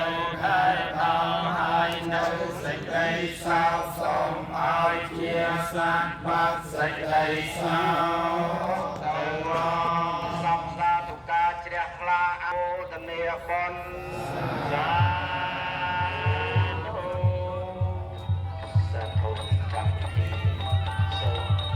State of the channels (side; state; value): both; identical; correlation 1.00